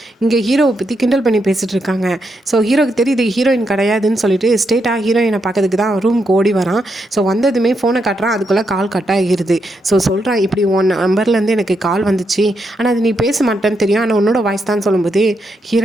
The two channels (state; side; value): normal; both; correlation 0.81